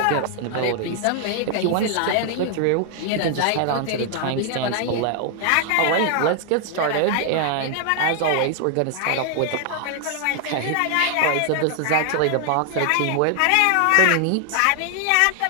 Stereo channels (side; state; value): both; different; correlation 0.00